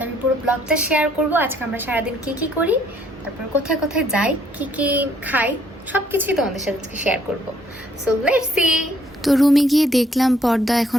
আমি পুরো ব্লগটা শেয়ার করব। আজকে আমরা সারাদিন কি করি, তারপর কোথায় কোথায় যাই, কি খাই, সবকিছুই তোমাদের সাথে আজকে শেয়ার করব। So let's see. তো রুমে গিয়ে দেখলাম পর্দা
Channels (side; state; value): both; normal; correlation 0.65